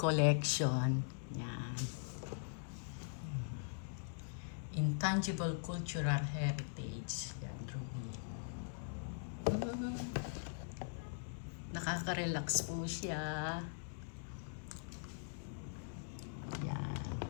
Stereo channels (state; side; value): silent; right; digital silence